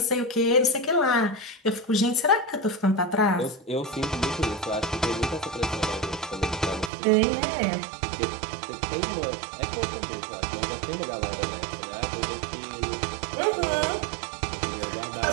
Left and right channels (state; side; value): drops out; left; at 6.9 s